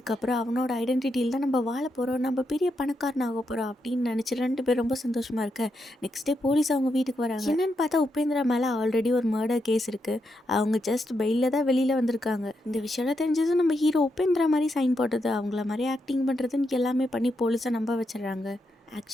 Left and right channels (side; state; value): both; normal; correlation 0.83